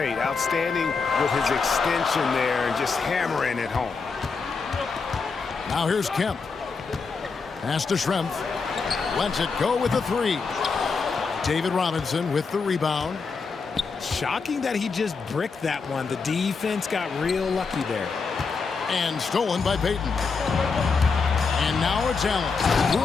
Outstanding with his extension there and just hammering it home. Now here's Kemp. Pass to Schrempf. Lets it go with the three. David Robinson with the rebound. Shocking that he just bricked that one. The defense got real lucky there. And stolen by Payton. And now it's Allen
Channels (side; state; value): right; quieter; 4.9 dB